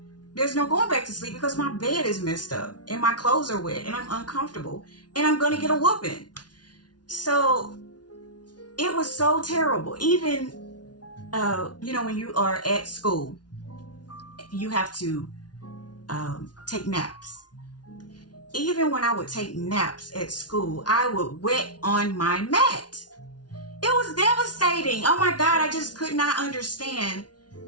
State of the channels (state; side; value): late; right; 0.69 ms